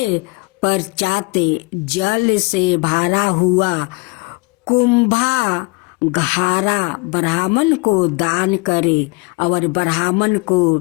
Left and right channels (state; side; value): quieter; right; 26.5 dB